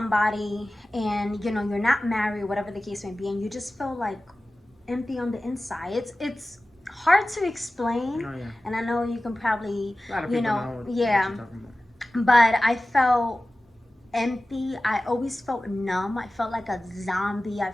and you're not married, whatever the case may be, and you just feel like empty on the inside? It's hard to explain. Oh, yeah. And I know you can probably, A lot of people know what yeah, you're talking about. but I felt empty. I always felt numb. I felt like a zombie. I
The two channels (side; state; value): both; normal; correlation 0.96